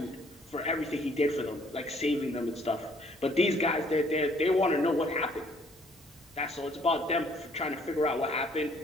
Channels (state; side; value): normal; both; correlation 0.62